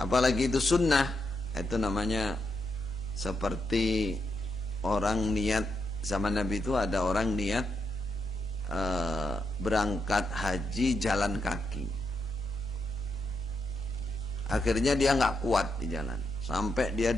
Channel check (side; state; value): both; normal; correlation 0.82